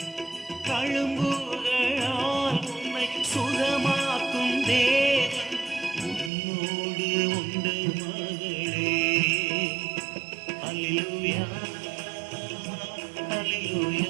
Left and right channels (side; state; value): left; drops out; at 6.3 s